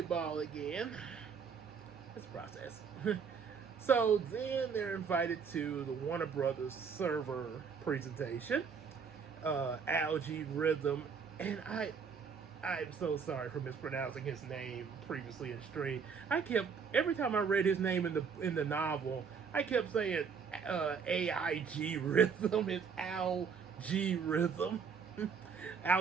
again. It's a process. So then they're invited to the Warner Brothers server presentation. Algae Rhythm, and I'm so sorry for mispronouncing his name previously in stream. Every time I read his name in the novel, I kept saying AIG Rhythm. It's Algae Rhythm.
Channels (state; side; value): quieter; left; 6.1 dB